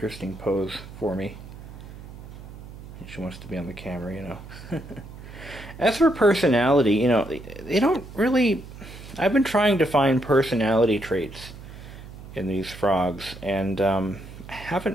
pose for me. She wants to be on the camera, you know. As for personality, you know, they don't really... I've been trying to find personality traits in these frogs, and I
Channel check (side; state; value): right; noise; hum, 15 dB below the sound